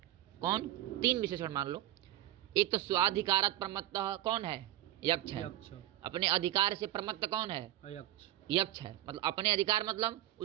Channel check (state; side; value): quieter; left; 14.3 dB